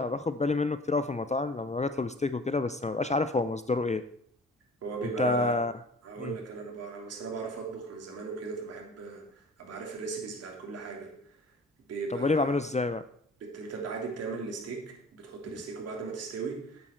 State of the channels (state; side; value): normal; both; correlation 0.45